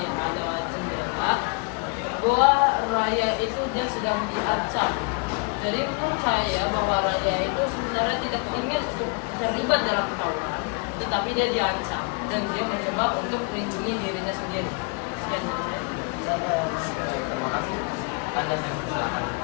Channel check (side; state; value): right; quieter; 35.0 dB